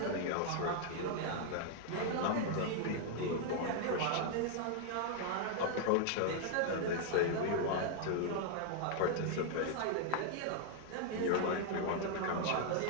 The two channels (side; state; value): both; different; correlation 0.00